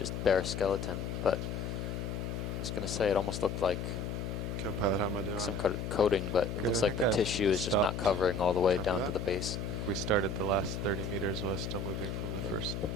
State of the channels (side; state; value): left; noise; hum, 4 dB below the sound